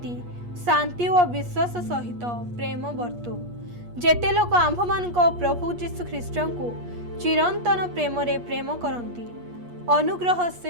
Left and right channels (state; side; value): late; left; 8.4 ms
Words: शांति व विश्वास सहित प्रेम वर्तु। जेते लोक आंभ मानक प्रभु जीशु ख्रीष्टଙ୍କୁ चिरंतन प्रेम रे प्रेम करंती अनुग्रह